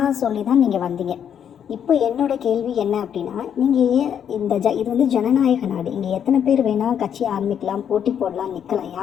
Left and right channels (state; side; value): quieter; right; 8.7 dB